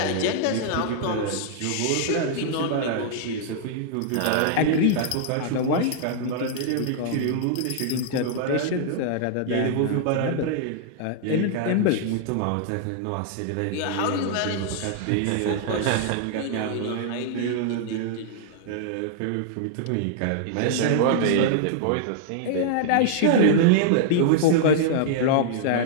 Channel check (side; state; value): both; different; correlation -0.01